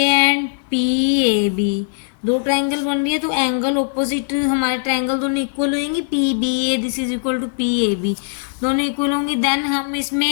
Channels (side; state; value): right; silent; digital silence